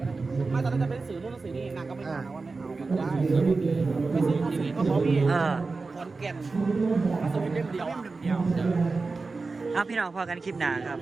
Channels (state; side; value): quieter; left; 4.0 dB